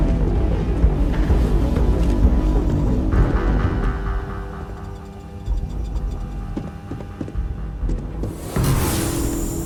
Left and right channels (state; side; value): identical; both; correlation 1.00